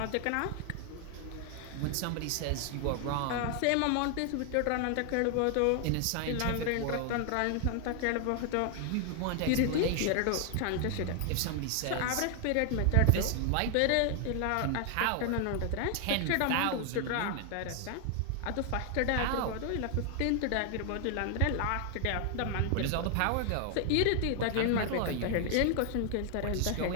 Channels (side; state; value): both; different; correlation 0.00